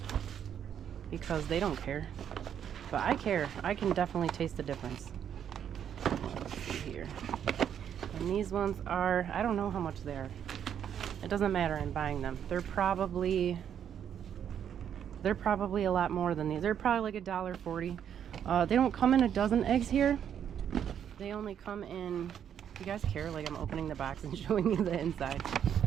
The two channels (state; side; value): quieter; left; 8.9 dB